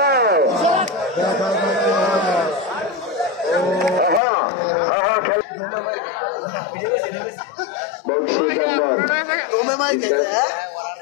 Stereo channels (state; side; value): drops out; right; at 4.2 s